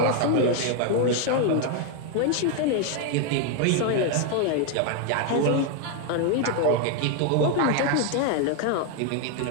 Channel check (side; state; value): both; different; correlation 0.01